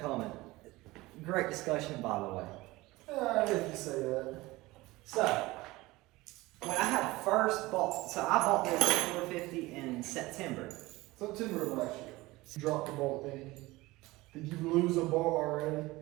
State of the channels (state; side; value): quieter; left; 20.2 dB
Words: Great discussion, by the way. If you say that. So, when I had first bought, so I bought this 450 in September. September of last year. You dropped the ball, didn't you? Did you lose a ball already?